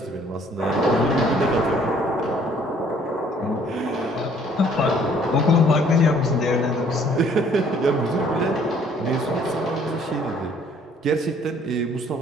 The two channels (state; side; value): normal; both; correlation 0.60